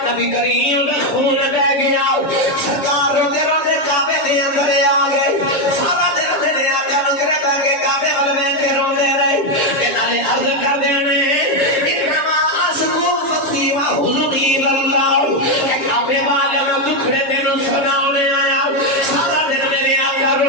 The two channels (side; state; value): right; late; 6.7 ms